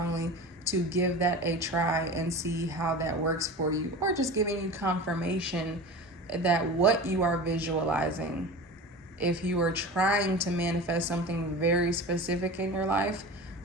to give that a try and see how that works for you, or just giving you confirmation that what you are visualizing, if you are trying to manifest something very specific in your life,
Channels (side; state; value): both; normal; correlation 0.32